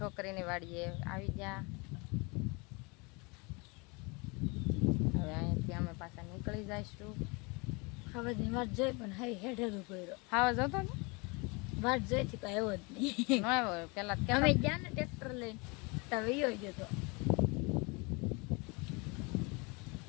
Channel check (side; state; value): right; quieter; 28.8 dB